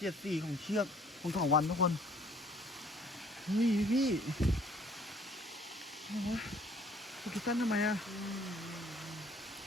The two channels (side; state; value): both; normal; correlation 0.57